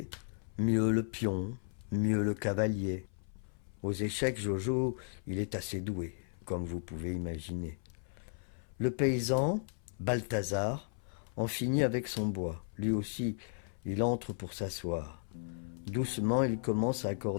mieux le pion, mieux le cavalier. Aux échecs, Jojo, il est assez doué, comme vous pouvez imaginer. Le paysan, Balthazar, en finit avec son bois. Lui aussi, il entre pour s'asseoir. Doucement, il commence à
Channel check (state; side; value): silent; right; 54 dB below the other